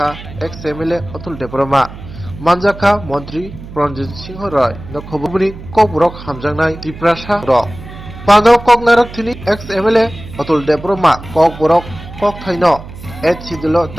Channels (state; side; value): noise; right; hum, 14 dB below the sound